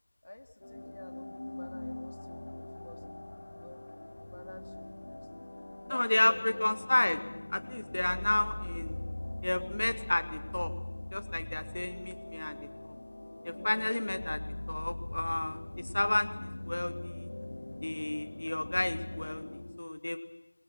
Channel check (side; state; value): both; inverted; correlation -1.00